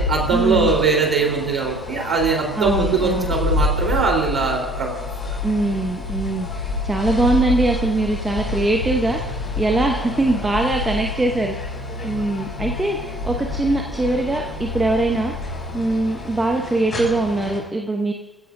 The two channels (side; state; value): both; normal; correlation 0.60